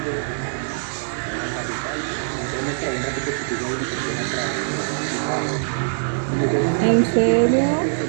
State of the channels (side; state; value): left; silent; digital silence